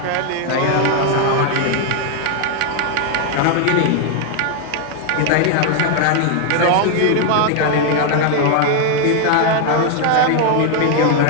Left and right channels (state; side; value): different; both; correlation 0.00